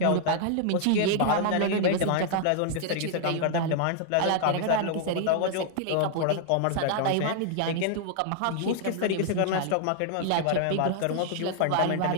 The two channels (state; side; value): different; both; correlation -0.01